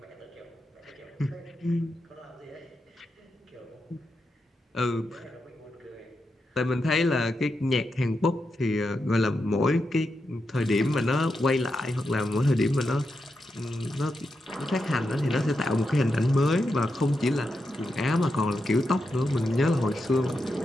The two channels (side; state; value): both; normal; correlation 0.86